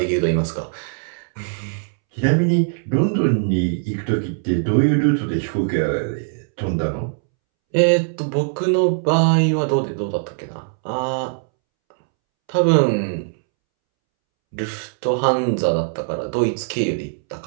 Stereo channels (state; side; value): silent; left; 65 dB below the other